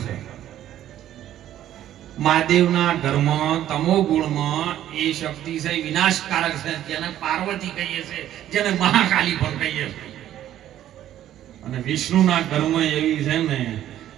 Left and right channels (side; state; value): left; quieter; 12.1 dB